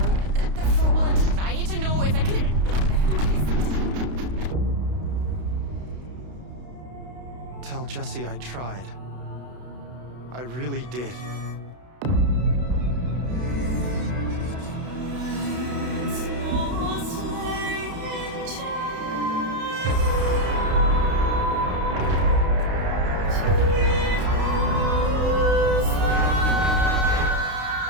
I need to know if I can. Tell Jesse I tried. I really did.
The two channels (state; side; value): late; left; 32 ms